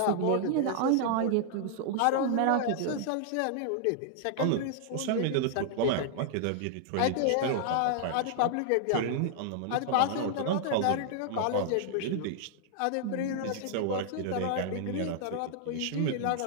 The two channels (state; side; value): different; both; correlation -0.01